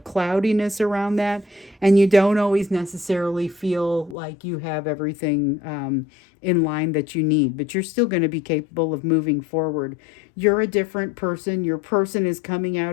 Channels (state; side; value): drops out; right; at 4.2 s